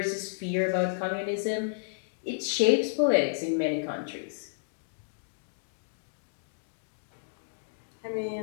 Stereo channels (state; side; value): silent; right; digital silence